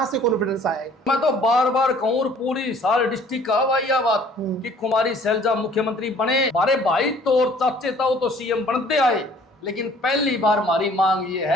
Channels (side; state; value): both; normal; correlation 0.54